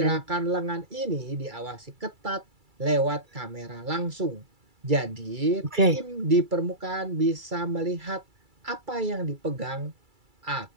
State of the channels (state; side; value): late; left; 2.3 ms